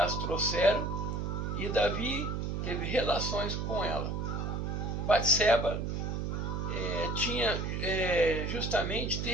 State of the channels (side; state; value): right; noise; hum, 2 dB below the sound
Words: trouxeram e Davi teve relações com ela. Batseba tinha justamente